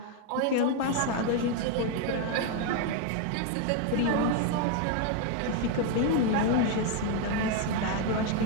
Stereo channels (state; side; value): different; both; correlation 0.01